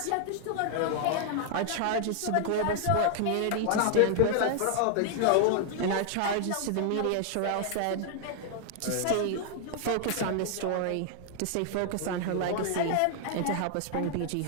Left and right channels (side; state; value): both; different; correlation 0.00